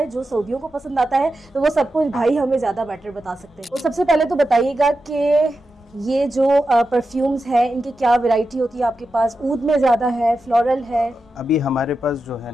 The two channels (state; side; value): normal; both; correlation 0.90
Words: जो सऊदियों को पसंद आता है। तो वो सब कुछ भाई हमें ज़्यादा बेटर बता सकते हैं। तो सबसे पहले तो बताइएगा कि ये जो परफ्यूम्स हैं इनकी क्या वैरायटी होती है आपके पास? ऊद में ज़्यादा है, फ्लोरल है? अभी हमारे पास जो है